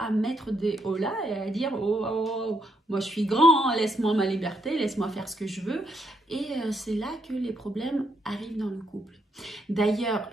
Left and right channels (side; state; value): both; normal; correlation 0.76